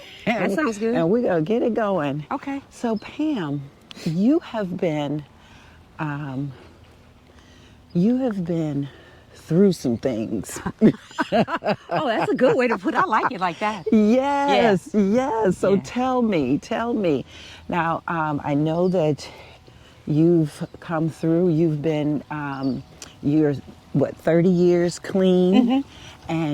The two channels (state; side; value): identical; both; correlation 1.00